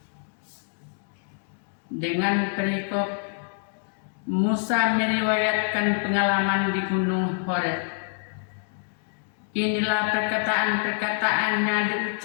Dengan perikop Musa meriwayatkan pengalaman di Gunung Horeb. Inilah perkataan-perkataan yang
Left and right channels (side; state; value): right; silent; digital silence